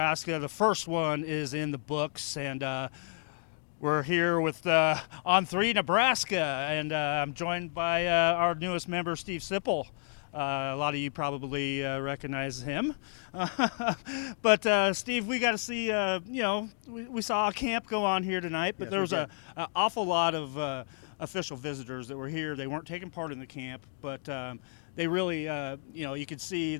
The first one is in the books, and we're here with On 3 Nebraska, and I'm joined by our newest member, Steve Sipple. A lot of you probably recognize him. But Steve, we got to see, we saw a camp go on here tonight, but Yes, there was an awful lot of official visitors that were here. They weren't taking part in the camp, but they really, you could see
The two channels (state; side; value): silent; right; digital silence